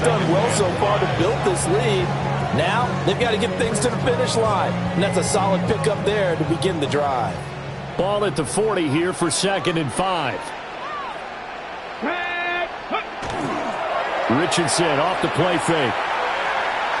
done well so far to build this lead. Now they've got to get things to the finish line, and that's a solid pickup there to begin the drive. Ball at the 40 here for 2nd and 5. Richardson off the play fake.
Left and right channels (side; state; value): both; identical; correlation 1.00